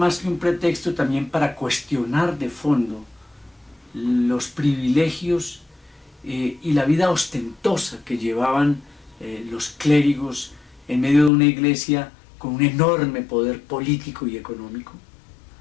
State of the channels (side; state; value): right; drops out; at 11.3 s